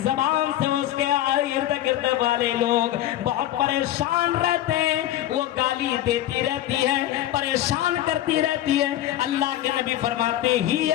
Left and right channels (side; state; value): right; quieter; 13.3 dB